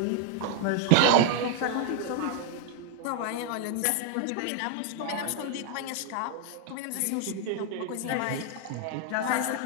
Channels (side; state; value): both; different; correlation 0.00